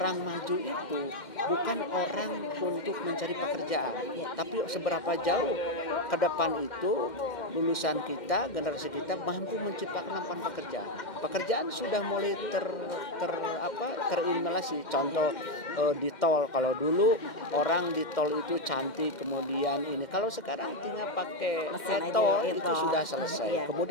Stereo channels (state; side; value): late; right; 2.1 ms